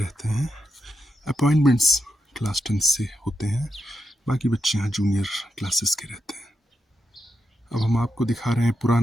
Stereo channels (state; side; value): normal; both; correlation 0.86